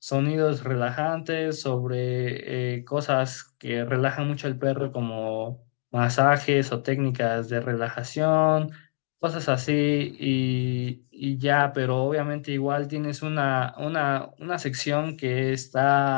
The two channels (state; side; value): silent; right; digital silence